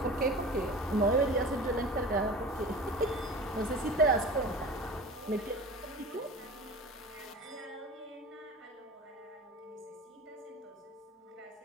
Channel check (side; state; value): both; normal; correlation 0.36